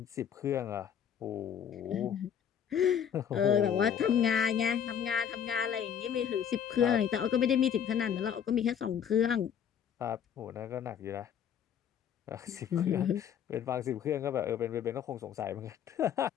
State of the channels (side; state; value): right; quieter; 8.7 dB